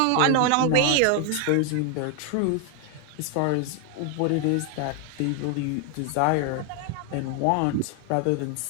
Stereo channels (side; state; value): both; different; correlation 0.01